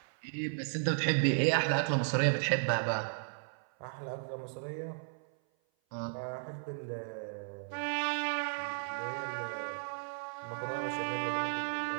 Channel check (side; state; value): left; silent; 55 dB below the other